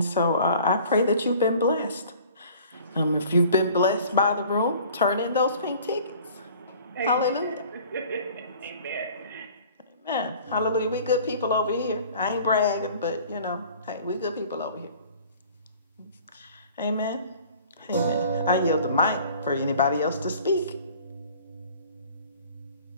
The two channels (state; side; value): inverted; both; correlation -0.49